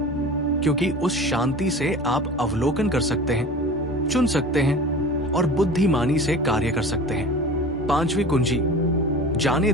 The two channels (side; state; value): both; normal; correlation 0.37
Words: क्योंकि उस शांति से आप अवलोकन कर सकते हैं, चुन सकते हैं और बुद्धिमानी से कार्य कर सकते हैं। पांचवी कुंजी, जाने